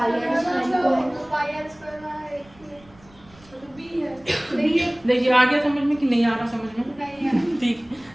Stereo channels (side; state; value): right; noise; rumble, 26 dB below the sound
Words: आर स्क्वायर को है। पाई आर स्क्वायर में एक तो बी है। देखिए आ गया समझ में कि नहीं आ रहा समझ में? नहीं है। ठीक